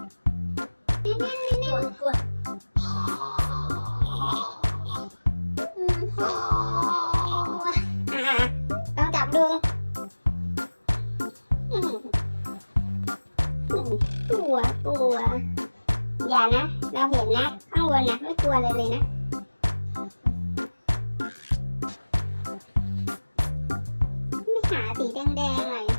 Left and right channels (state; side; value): inverted; both; correlation -1.00